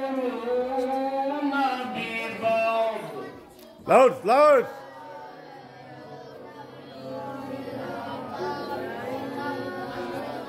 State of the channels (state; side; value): identical; both; correlation 1.00